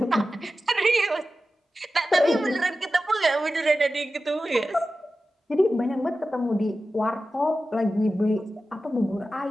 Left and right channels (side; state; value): both; normal; correlation 0.94